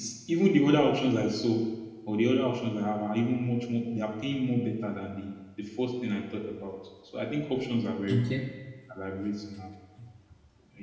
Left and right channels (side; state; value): both; identical; correlation 1.00